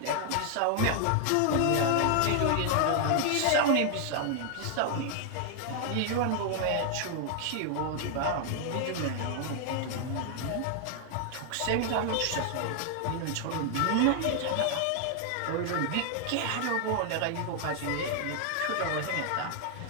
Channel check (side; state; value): both; different; correlation 0.00